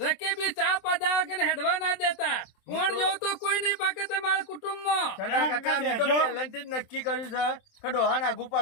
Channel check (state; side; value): late; right; 27 ms